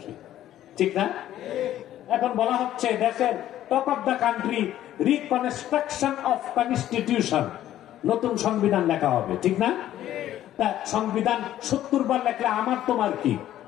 ঠিক না? এখন বলা হচ্ছে দেশের talk of the country reconstruction of constitution, নতুন সংবিধান লেখা হবে, ঠিক না? তা সংবিধান 70 বার লেখলে আমার তোমার কি?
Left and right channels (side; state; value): right; quieter; 12.6 dB